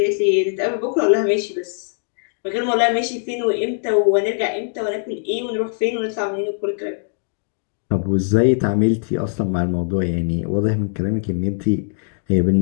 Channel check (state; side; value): silent; right; digital silence